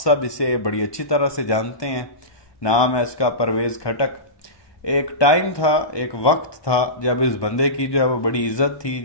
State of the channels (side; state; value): right; late; 1.2 ms